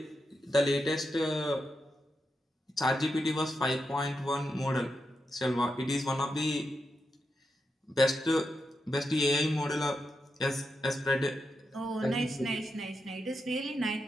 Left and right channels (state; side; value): normal; both; correlation 0.86